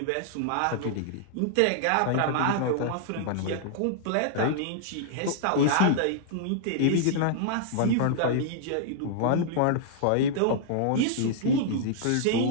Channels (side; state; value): both; different; correlation -0.01